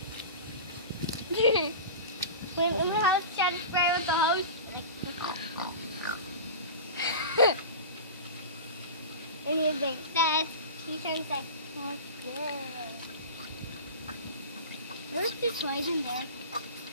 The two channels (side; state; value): both; inverted; correlation -0.31